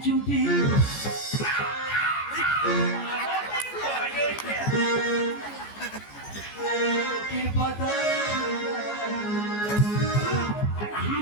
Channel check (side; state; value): right; late; 14 ms